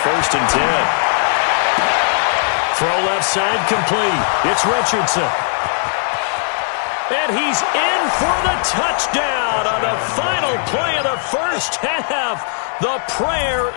and 10. Throw left side complete. It's Richardson. And he's in for the touchdown on the final play of the first half. The prayer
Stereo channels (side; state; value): right; silent; 64 dB below the other